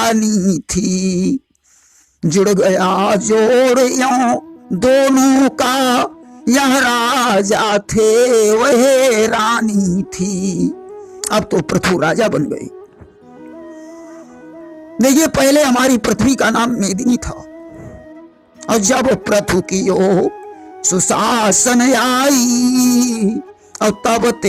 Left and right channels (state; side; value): identical; both; correlation 1.00